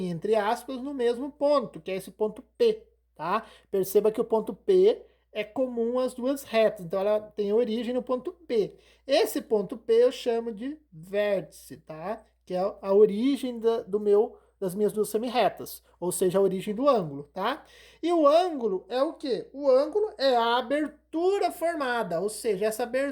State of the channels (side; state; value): both; identical; correlation 1.00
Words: entre aspas, no mesmo ponto, que é esse ponto P, tá? Perceba que o ponto P é comum às duas retas, então ela tem origem no ponto P. Esse ponto P eu chamo de vértice, tá? Que é a origem das minhas duas semirretas, ou seja, a origem do ângulo, tá? E o ângulo é o quê? O ângulo é a abertura formada, ou seja, essa